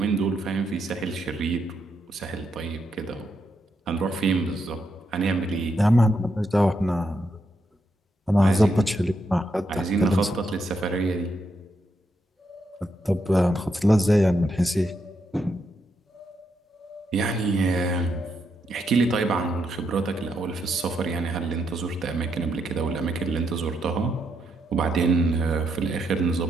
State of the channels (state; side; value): normal; both; correlation 0.80